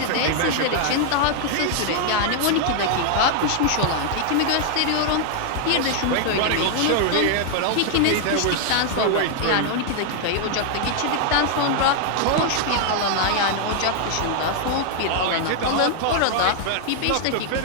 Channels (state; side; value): different; both; correlation 0.00